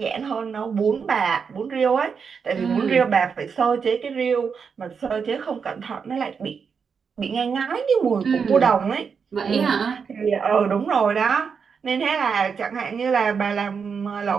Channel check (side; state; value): left; quieter; 6.1 dB